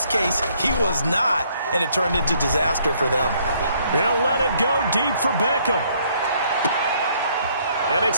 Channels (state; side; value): inverted; both; correlation -0.66